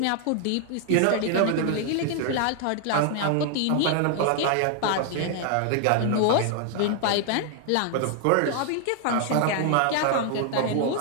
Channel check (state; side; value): different; both; correlation 0.00